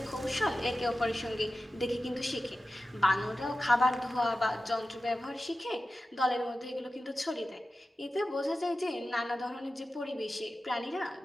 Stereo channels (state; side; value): normal; both; correlation 0.94